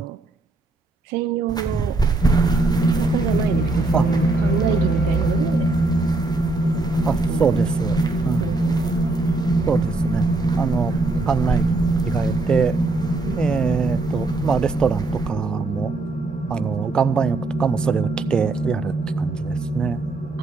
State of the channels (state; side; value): quieter; left; 3.2 dB